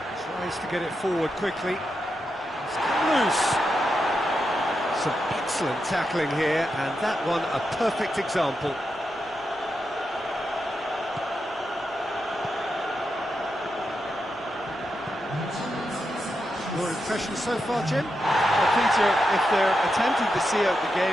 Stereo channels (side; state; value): left; noise; rumble, 29 dB below the sound